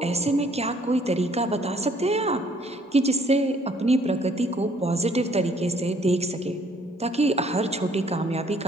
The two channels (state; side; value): normal; both; correlation 0.62